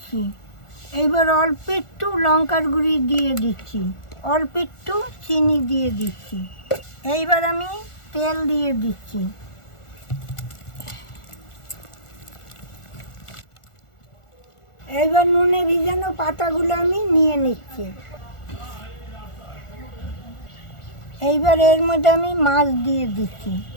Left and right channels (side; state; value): right; late; 1.4 ms